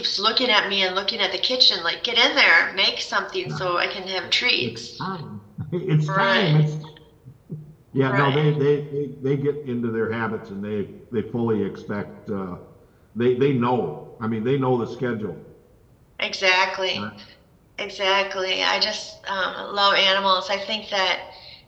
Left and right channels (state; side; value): identical; both; correlation 1.00